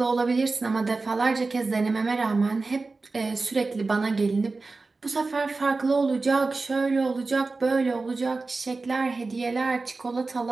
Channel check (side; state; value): left; quieter; 3.7 dB